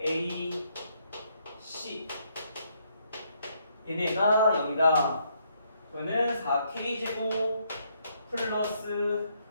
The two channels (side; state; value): both; inverted; correlation -0.73